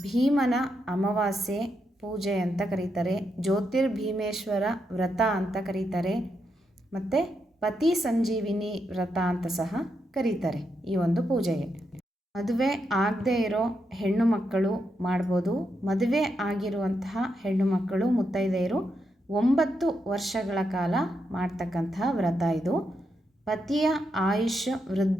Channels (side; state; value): both; normal; correlation 0.82